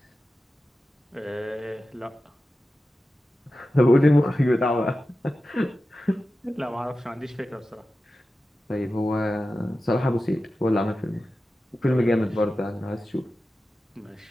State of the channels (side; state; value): both; normal; correlation 0.93